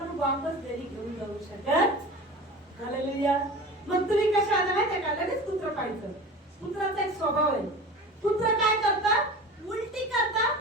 वापस घरी घेऊन जाऊ शकत. हालेलुया. मग तुम्ही कशा आला माहितीये का? लगेच कुत्र पाहायचं. कुत्राचा एक स्वभाव आहे. कुत्र काय करतात? उलटी करतात,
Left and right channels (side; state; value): both; normal; correlation 0.35